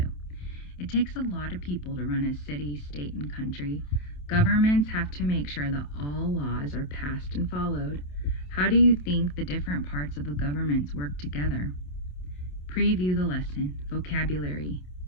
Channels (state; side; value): late; right; 27 ms